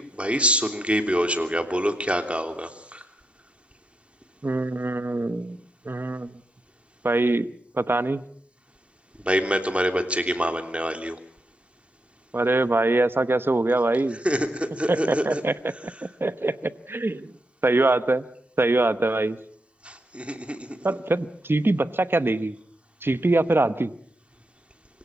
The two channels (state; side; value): normal; both; correlation 0.84